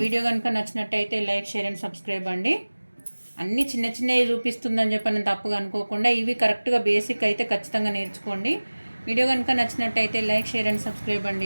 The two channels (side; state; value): both; inverted; correlation -1.00